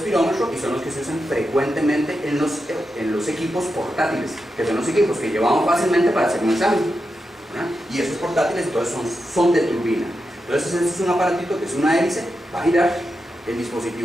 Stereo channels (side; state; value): both; normal; correlation 0.88